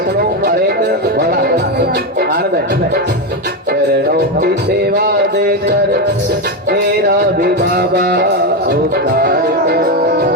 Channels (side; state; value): both; normal; correlation 0.10